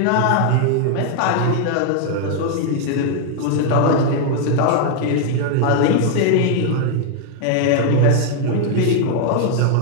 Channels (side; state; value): both; different; correlation 0.00